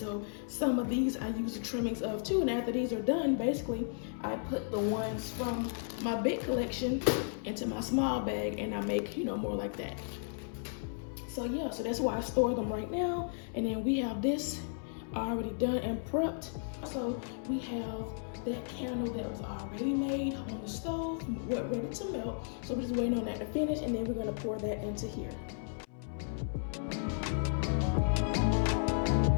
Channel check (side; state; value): right; silent; 55 dB below the other